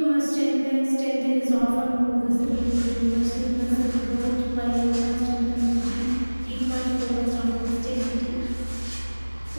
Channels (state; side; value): inverted; both; correlation -1.00